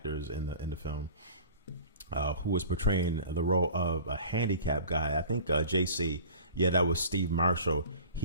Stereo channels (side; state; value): both; inverted; correlation -0.42